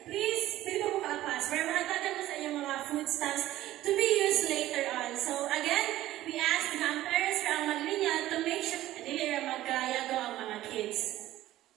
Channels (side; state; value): left; quieter; 14.8 dB